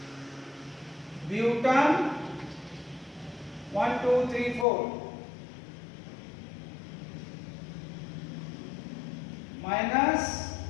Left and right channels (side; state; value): right; drops out; at 4.7 s